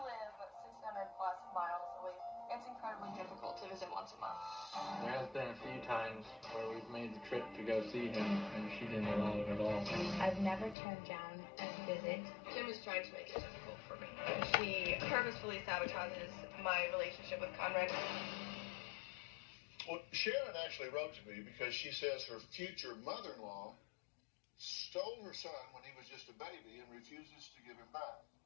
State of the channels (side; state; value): right; drops out; at 10.8 s